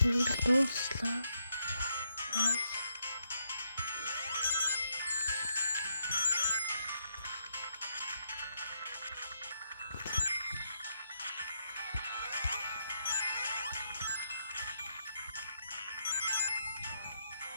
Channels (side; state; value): both; inverted; correlation -0.78